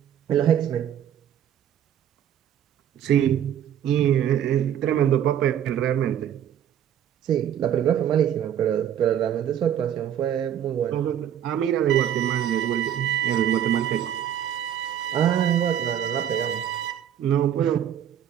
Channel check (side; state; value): left; quieter; 10.0 dB